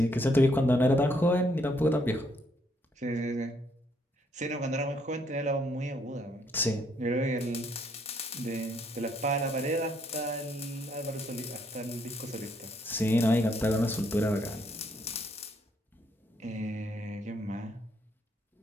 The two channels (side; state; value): both; normal; correlation 0.70